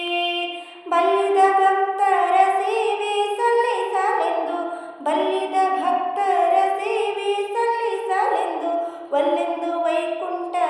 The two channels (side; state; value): both; identical; correlation 1.00